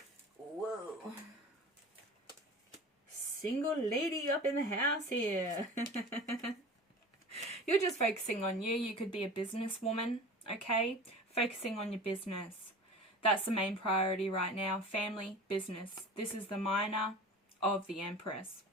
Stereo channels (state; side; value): normal; both; correlation 0.37